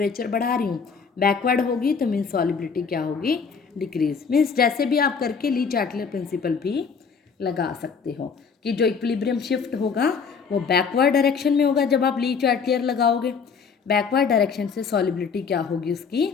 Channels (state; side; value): quieter; right; 5.8 dB